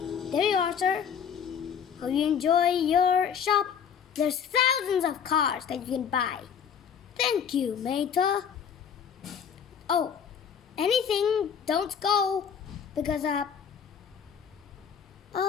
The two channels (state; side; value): quieter; right; 7.6 dB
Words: there you are, sir. Hope you enjoy your shop. There's thousands of cars that you can buy. Thank you, Meta. Oh, anything, don't go. Because,